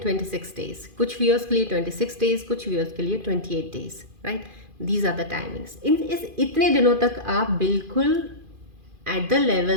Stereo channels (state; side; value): late; left; 2.5 ms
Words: डेज, कुछ व्यूअर्स के लिए 26 डेज, कुछ व्यूअर्स के लिए 28 days, right. These are the timings. इस इतने दिनों तक आप बिल्कुल एट द